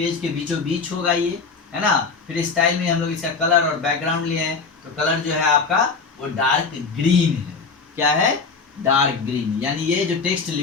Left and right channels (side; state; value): right; quieter; 4.8 dB